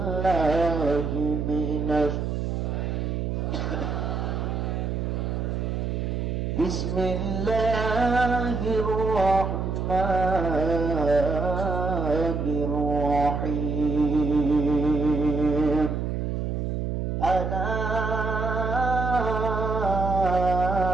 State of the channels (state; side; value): noise; right; hum, 1 dB below the sound